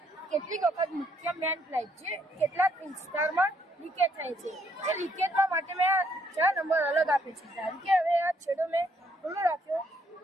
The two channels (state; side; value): normal; both; correlation 0.71